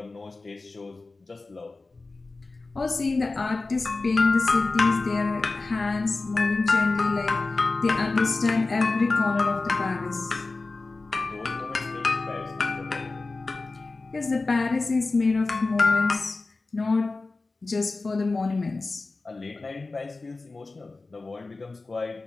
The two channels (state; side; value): quieter; right; 3.6 dB